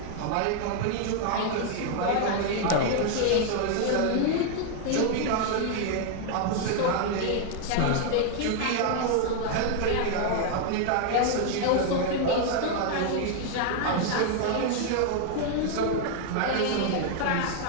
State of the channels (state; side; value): different; both; correlation 0.00